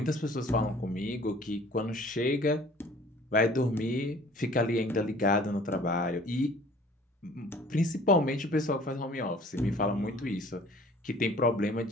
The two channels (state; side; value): normal; both; correlation 0.51